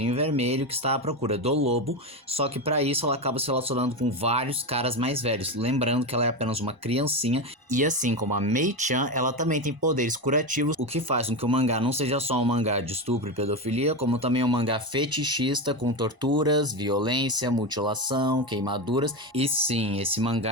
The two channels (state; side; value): late; left; 1.0 ms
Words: Vermelho que está à procura do lobo, só que para isso ela acaba se relacionando com vários caras mais velhos, lembrando que ela é apenas uma criancinha, e assim como a Mei-chan, ela também tem poderes curativos, o que faz com que o mangá não seja só um mangá de estupro e pedofilia, como também um mangá fetichista com torturas, violência, mutilação, queimaduras, e sim, esse